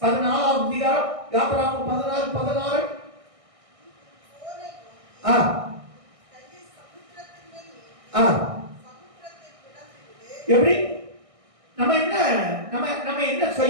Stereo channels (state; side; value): late; left; 1.6 ms